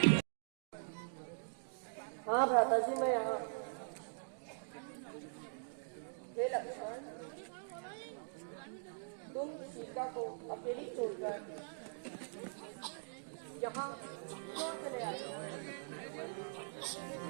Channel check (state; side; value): silent; left; digital silence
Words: हाँ भ्राता जी, मैं यहाँ। हे लक्ष्मण, तुम सीता को अकेली छोड़कर यहाँ क्यों चले आए?